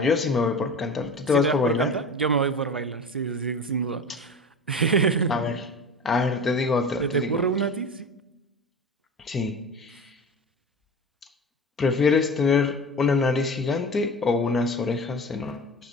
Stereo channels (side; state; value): both; normal; correlation 0.33